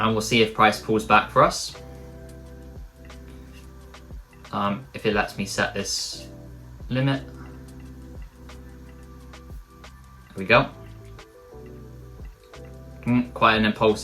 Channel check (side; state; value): both; identical; correlation 1.00